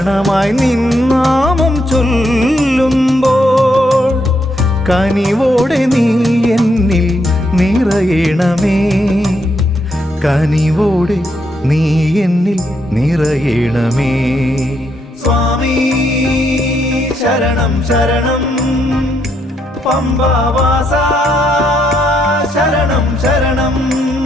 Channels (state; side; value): normal; both; correlation 0.77